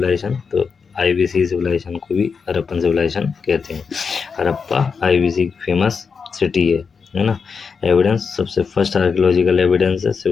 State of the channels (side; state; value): right; quieter; 5.6 dB